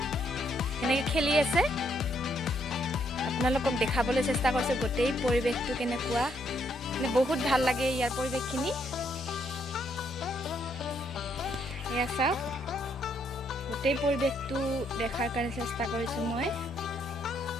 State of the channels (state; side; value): normal; both; correlation 0.73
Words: কেনেকৈ খেলি আছে। আপোনালোকক দেখাবলৈ চেষ্টা কৰিছোঁ গোটেই পৰিৱেশটো কেনেকুৱা। মানে বহুত ভাল লাগে ইয়াৰ পৰিৱেশখিনি। এয়া চাওক, গোটেই পৰিৱেশটো দেখাৰ কাৰণে চেষ্টা কৰিছোঁ মই।